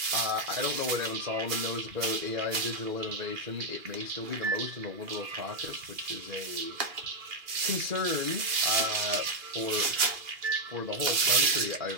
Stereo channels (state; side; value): late; left; 2.4 ms